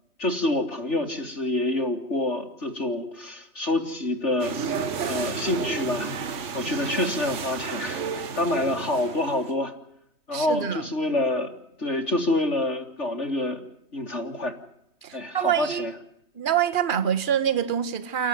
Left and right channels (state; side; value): late; right; 3.1 ms